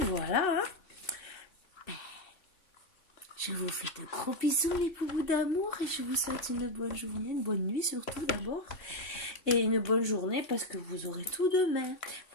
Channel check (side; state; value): right; late; 2.7 ms